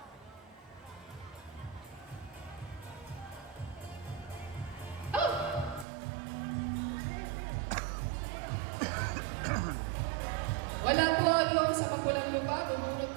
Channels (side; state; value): left; drops out; at 5.9 s